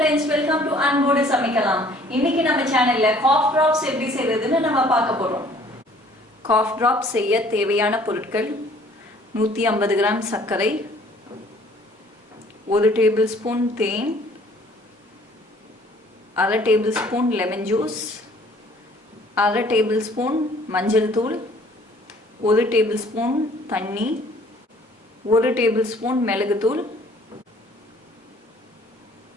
welcome to Anbodu Samikalam. இன்னைக்கு நம்ம சேனல்ல cough drops எப்படி செய்யறதுன்னு நம்ம பார்க்க போறோம். cough drops செய்ய தேவையான பொருட்கள் 150 கிராம் சர்க்கரை, 1 டேபிள்ஸ்பூன் தேன், 1/2 டேபிள்ஸ்பூன் லெமன் ஜூஸ், 1/2 டேபிள்ஸ்பூன் மஞ்சள் தூள், 1 டேபிள்ஸ்பூன் தண்ணி, 1 டேபிள்ஸ்பூன் மிளகு தூள்,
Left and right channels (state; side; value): normal; both; correlation 0.56